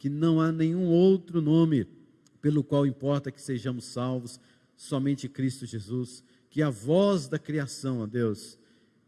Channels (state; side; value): identical; both; correlation 1.00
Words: não há nenhum outro nome pelo qual importa que sejamos salvos, somente Cristo Jesus. Que a voz da criação, ó Deus,